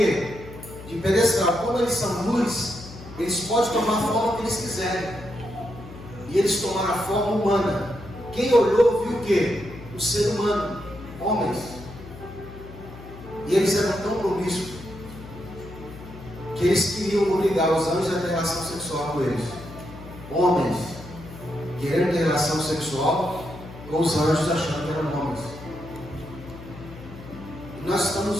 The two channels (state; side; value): noise; left; hum, 15 dB below the sound